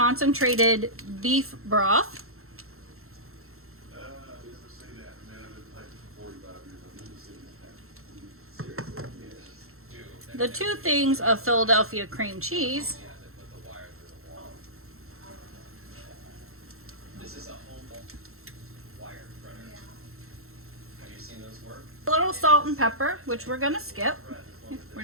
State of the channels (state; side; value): late; left; 0.62 ms